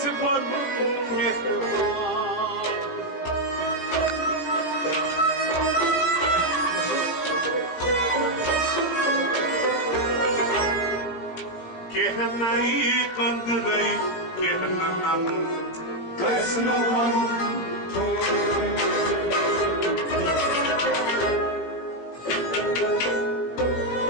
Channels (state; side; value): late; right; 18 ms